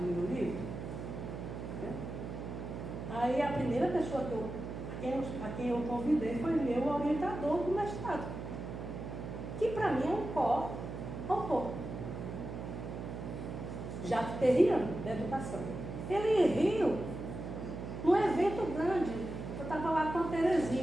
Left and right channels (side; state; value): right; noise; hum, 7 dB below the sound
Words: livro? Né? Aí a primeira pessoa a quem eu convidei foi meu orientador do mestrado, que para mim é um co-autor, Jacques Terrian, da educação. Ele riu num evento grande. Eu estava lá com a